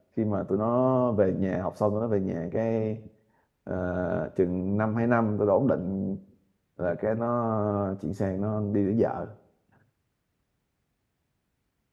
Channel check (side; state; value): both; identical; correlation 1.00